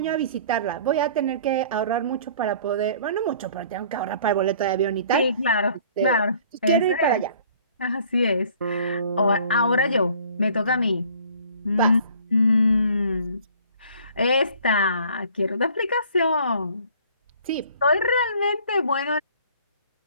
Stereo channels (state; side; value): inverted; both; correlation -0.53